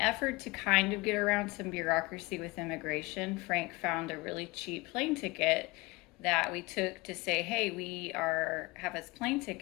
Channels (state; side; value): quieter; right; 23.1 dB